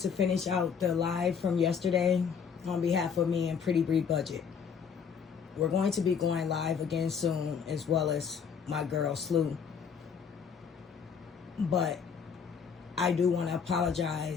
finish out the live from yesterday on behalf of me and Pretty Bree Budget. We're going to be going live again soon, as well as my girl Slew. But I do want to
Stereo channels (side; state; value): right; quieter; 6.7 dB